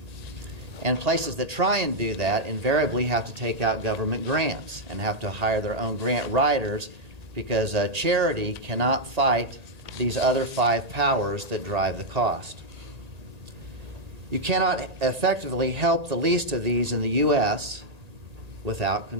And places that try and do that invariably have to take out government grants and have to hire their own grant writers, because charity cannot fight these other 5 powers that drive the cost. You cannot effectively help the least of these in the U.S. without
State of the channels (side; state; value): left; late; 1.8 ms